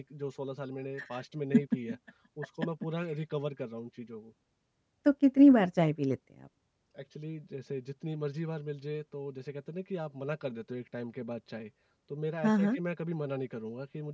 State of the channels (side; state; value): both; identical; correlation 1.00